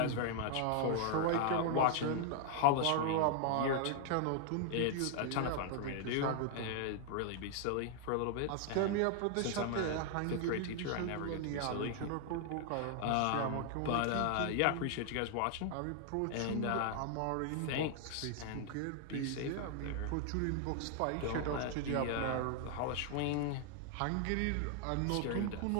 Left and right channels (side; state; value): both; different; correlation 0.00